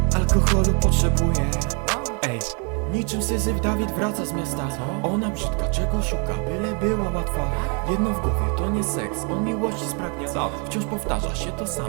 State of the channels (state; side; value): quieter; left; 37.1 dB